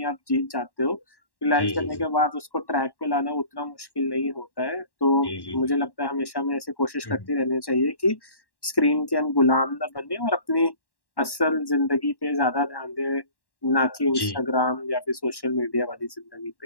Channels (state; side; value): late; right; 1.1 ms